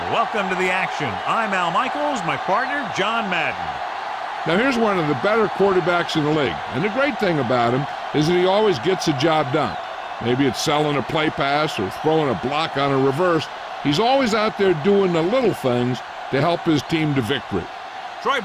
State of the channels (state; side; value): identical; both; correlation 1.00